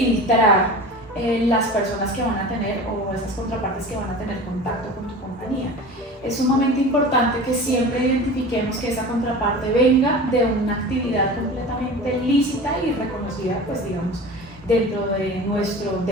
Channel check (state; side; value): normal; both; correlation 0.35